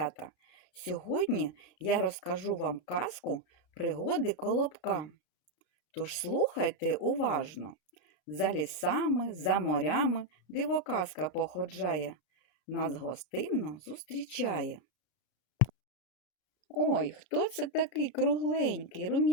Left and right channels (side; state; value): right; late; 33 ms